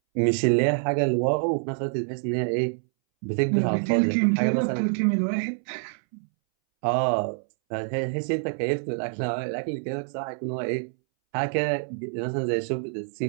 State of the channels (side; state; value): left; silent; 61 dB below the other